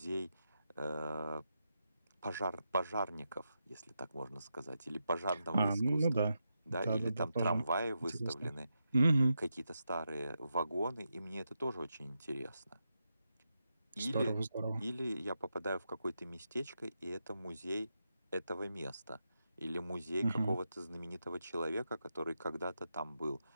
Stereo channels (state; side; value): inverted; both; correlation -0.86